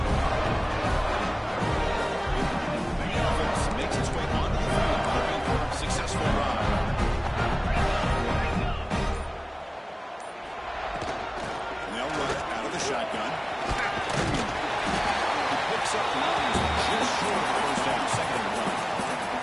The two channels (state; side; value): identical; both; correlation 1.00